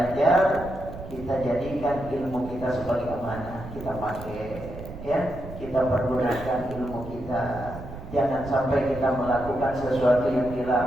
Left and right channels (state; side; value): noise; right; rumble, 12 dB below the sound